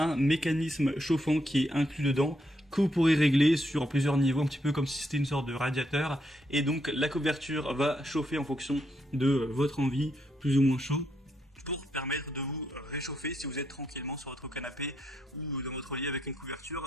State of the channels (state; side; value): normal; both; correlation 0.78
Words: mécanisme chauffant qui est inclus dedans, que vous pourrez régler sur plusieurs niveaux, un petit peu comme si c'était une sorte de radiateur, et donc la couverture va chauffer en fonction de votre envie, plus ou moins chaud, pour permettre de vous réchauffer si vous êtes tranquillement sur votre canapé ou dans votre lit avec une